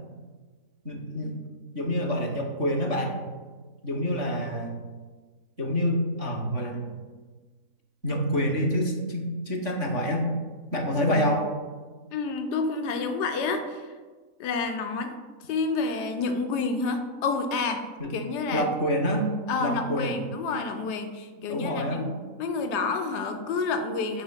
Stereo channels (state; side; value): late; left; 3.5 ms